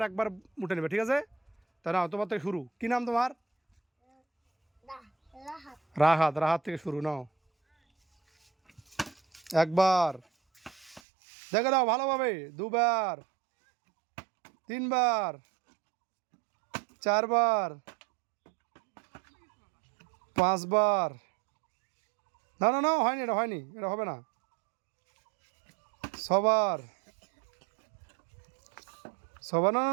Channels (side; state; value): left; drops out; at 11.0 s